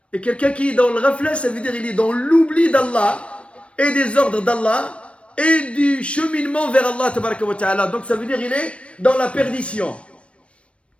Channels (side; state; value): right; late; 0.061 ms